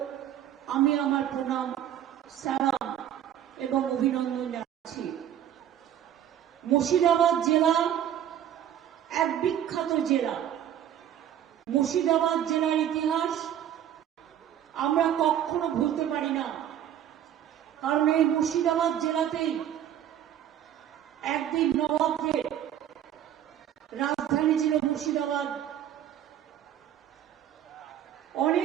আমি আমার প্রণাম, সালাম এবং অভিনন্দন জানাচ্ছি। মুর্শিদাবাদ জেলা এক বিখ্যাত জেলা। মুর্শিদাবাদ জেলার ইতিহাস আমরা কখনো ভুলতে পারি না, কারণ এই মুর্শিদাবাদ জেলাতেই একদিন নবাবদের রাজধানী ছিল মুর্শিদাবাদ।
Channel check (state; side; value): quieter; left; 10.6 dB